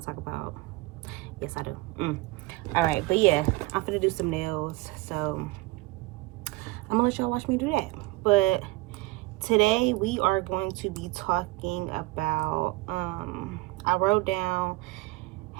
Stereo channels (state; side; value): quieter; left; 20.9 dB